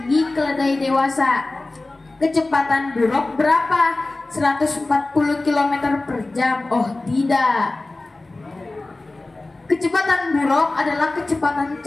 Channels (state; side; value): quieter; right; 3.1 dB